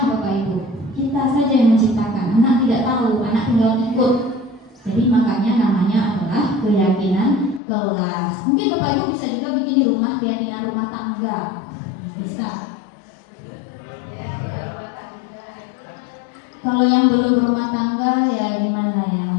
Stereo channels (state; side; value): drops out; right; at 7.6 s